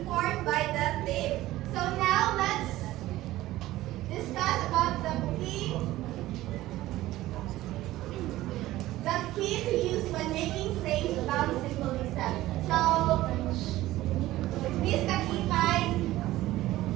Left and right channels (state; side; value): quieter; left; 16.1 dB